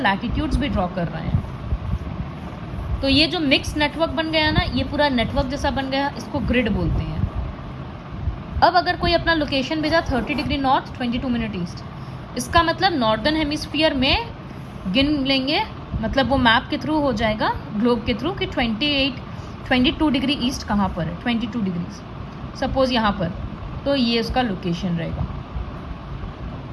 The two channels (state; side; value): identical; both; correlation 1.00